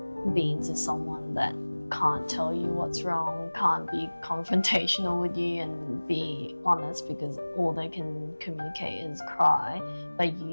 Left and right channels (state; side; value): inverted; both; correlation -1.00